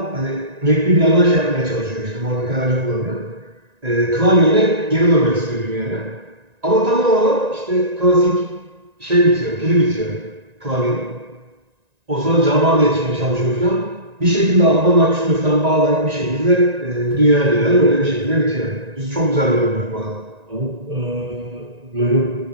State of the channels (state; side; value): late; left; 1.9 ms